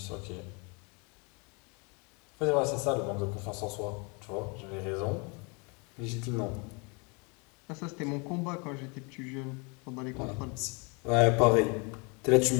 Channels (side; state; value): right; quieter; 31.7 dB